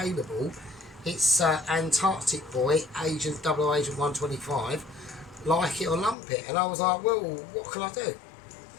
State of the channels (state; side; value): drops out; right; at 6.2 s